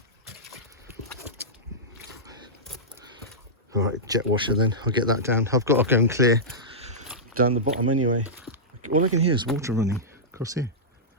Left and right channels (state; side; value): normal; both; correlation -0.13